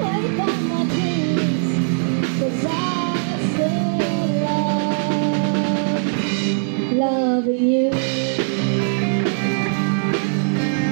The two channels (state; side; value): silent; left; 56 dB below the other